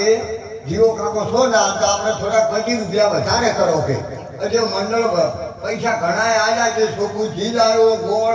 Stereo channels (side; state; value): both; identical; correlation 1.00